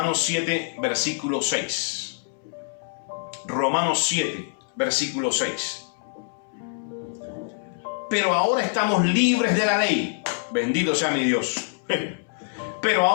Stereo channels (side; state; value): right; silent; 62 dB below the other